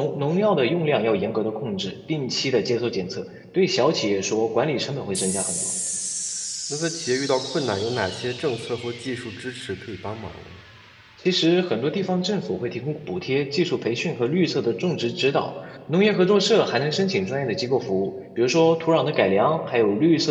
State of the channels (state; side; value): identical; both; correlation 1.00